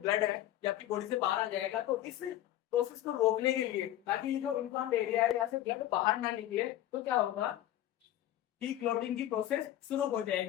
है ये आपकी बॉडी से बाहर आ जाएगा। तो इस प्रोसेस को रोकने के लिए, ताकि जो इन्फ्लेम्ड एरिया है यहाँ से ब्लड बाहर ना निकले, तो क्या होगा कि क्लॉटिंग की प्रोसेस शुरू हो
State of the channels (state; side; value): quieter; right; 13.2 dB